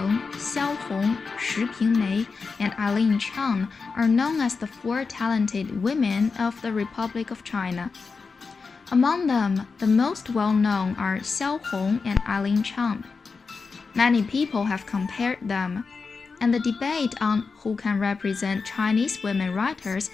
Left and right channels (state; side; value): quieter; right; 4.7 dB